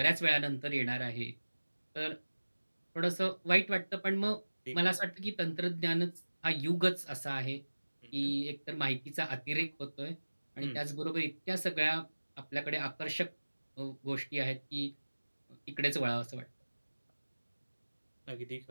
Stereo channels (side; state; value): both; inverted; correlation -1.00